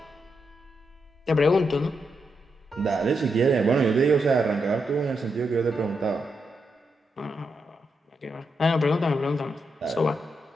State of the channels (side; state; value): both; normal; correlation 0.83